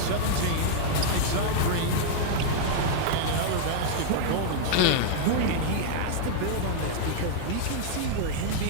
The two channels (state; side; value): different; both; correlation -0.01